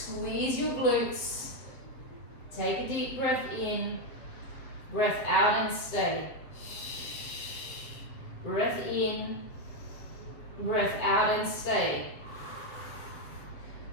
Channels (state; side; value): late; right; 7.6 ms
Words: your glutes. Take a deep breath in. Breath out and stay. Breath in. Breath out and stay.